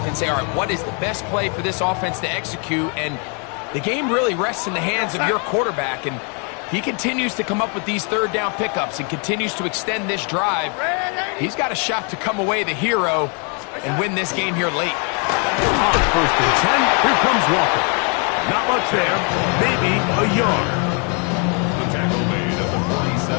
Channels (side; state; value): right; quieter; 37.0 dB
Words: and say, all right, what is the best play for this offense to execute? And the game really rests in the hands of your quarterback. And he continues to come up with these 3rd down pickups and continues to extend this drive. He's got a shot to come away the hero and win this game here late. On 1st and 10, here comes Walker. Not much there, maybe a yard. The tackle made at the